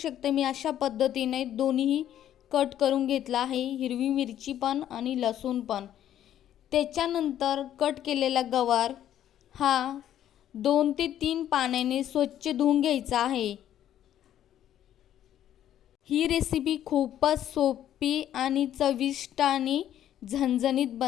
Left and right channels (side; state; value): right; quieter; 11.2 dB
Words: मी अशा पद्धतीने दोन्हीही कट करून घेतला आहे, हिरवी मिरची पण आणि लसूण पण. त्याच्यानंतर कट केलेला गवार हा 2 ते 3 पाण्याने स्वच्छ धुवून घ्यायचा आहे. ही रेसिपी खूपच सोपी आणि चविष्ट आणि झणझणीत